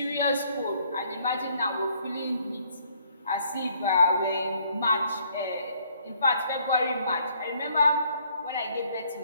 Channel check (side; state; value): both; inverted; correlation -0.65